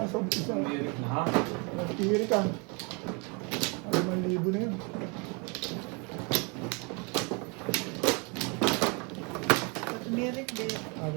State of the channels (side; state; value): left; quieter; 32.0 dB